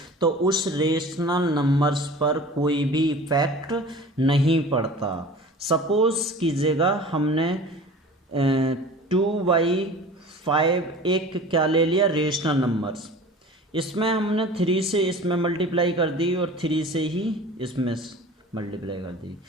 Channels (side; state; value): both; normal; correlation 0.40